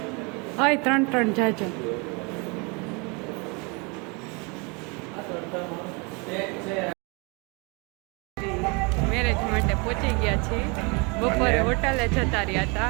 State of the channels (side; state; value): left; quieter; 30.5 dB